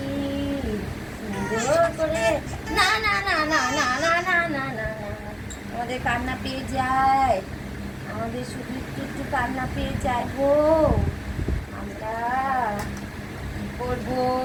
সুন্দর করে। না না না না না না না না না না, আমাদের কান্না পেয়ে যায়, আমাদের শুধু একটু একটু কান্না পেয়ে যায় গো। আমরা কি করবো,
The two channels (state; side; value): identical; both; correlation 1.00